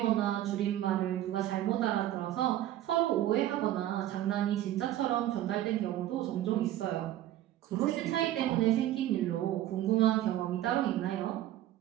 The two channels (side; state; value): left; quieter; 13.3 dB